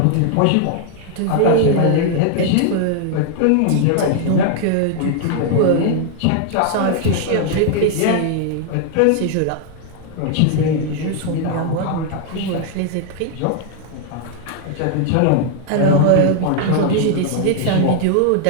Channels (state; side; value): different; both; correlation 0.00